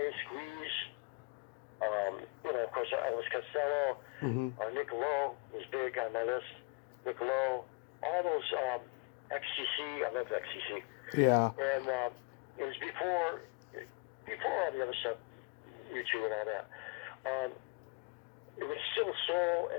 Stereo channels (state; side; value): quieter; right; 30.8 dB